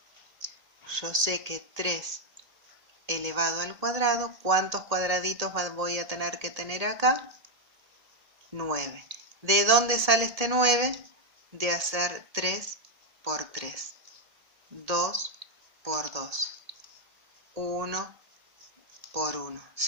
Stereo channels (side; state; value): left; late; 1.8 ms